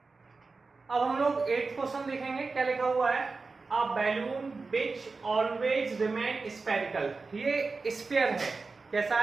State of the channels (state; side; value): quieter; left; 4.1 dB